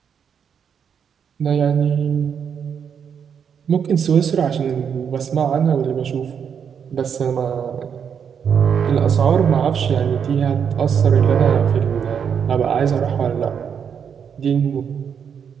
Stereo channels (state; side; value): quieter; left; 7.4 dB